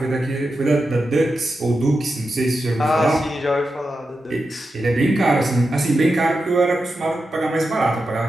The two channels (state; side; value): normal; both; correlation 0.89